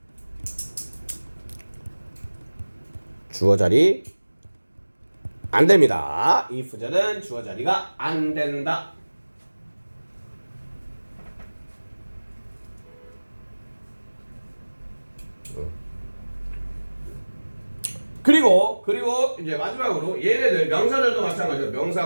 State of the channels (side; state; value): both; inverted; correlation -1.00